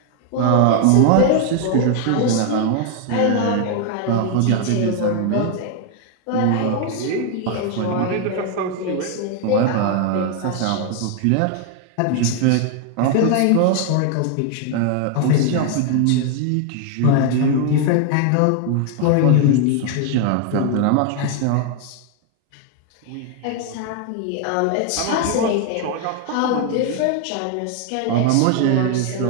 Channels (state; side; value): different; both; correlation 0.00